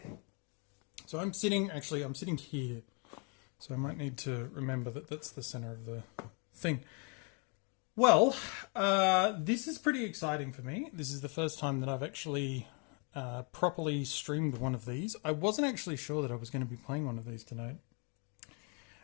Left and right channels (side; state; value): right; quieter; 35.8 dB